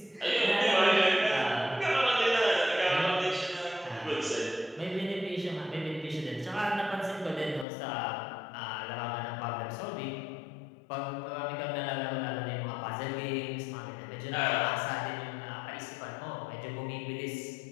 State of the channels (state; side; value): drops out; right; at 7.7 s